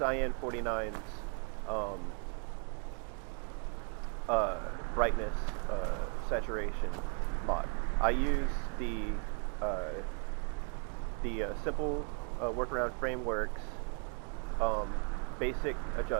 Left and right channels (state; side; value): quieter; left; 39.1 dB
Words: 49's brightness saturation mod. I use the simple workaround frameworks basic